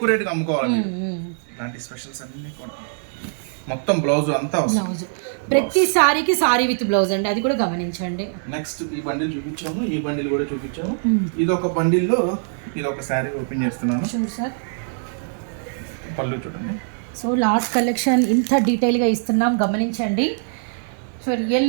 రేటుకి అమ్ముకోవాలి. ఇలాంటి స్పెషల్స్ అన్ని కూడా మొత్తం బ్లౌజ్ అంతా వస్తుంది. బ్లౌజ్ ప్రతి సారీకి సారీ విత్ బ్లౌజ్ అండి, అది కూడా గమనించండి. నెక్స్ట్ ఈ బండిల్ చూపించాము, ఈ బండిల్ కూడా చూపించాము. ఇది ఒక బండిల్లో ఇది ఒక శారీ ఓపెన్ చేస్తున్నాను. Sure sir. పళ్ళు చూడండి. సో లాస్ట్ కలెక్షన్ ఇంత డీటెయిల్గా ఇస్తున్నాం, గమనించండి. సో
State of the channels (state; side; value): silent; left; digital silence